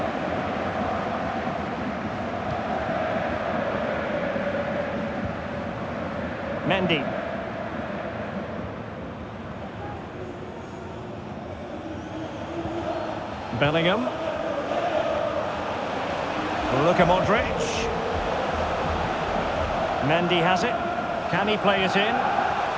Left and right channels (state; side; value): identical; both; correlation 1.00